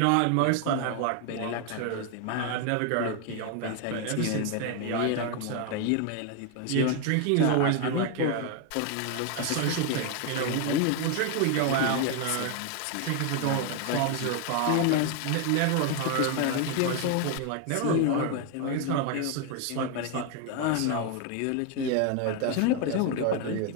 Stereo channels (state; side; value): different; both; correlation 0.01